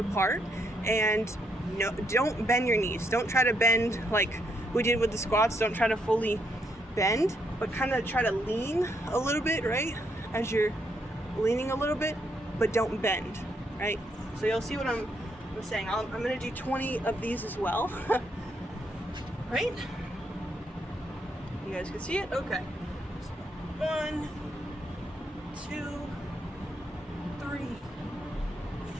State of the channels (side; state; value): both; normal; correlation 0.76